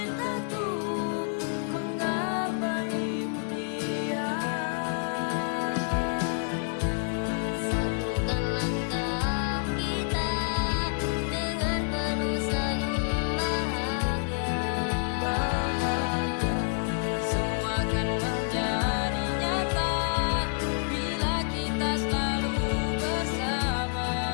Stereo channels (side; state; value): right; silent; digital silence